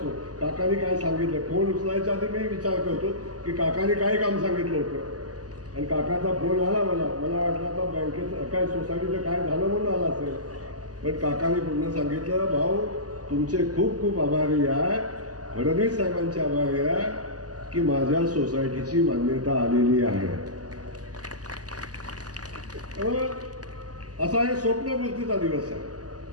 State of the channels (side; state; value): left; late; 0.67 ms